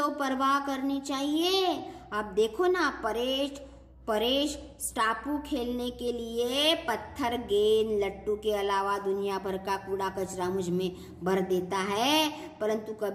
परवाह करनी चाहिए। अब देखो ना, परेश स्टापू खेलने के लिए पत्थर, गेंद, लट्टू के अलावा दुनिया भर का कूड़ा कचरा मुझ में भर देता है, परंतु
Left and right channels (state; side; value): identical; both; correlation 1.00